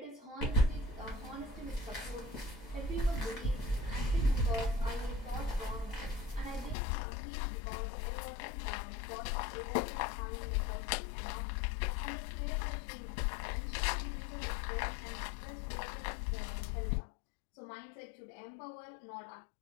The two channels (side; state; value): right; drops out; at 6.8 s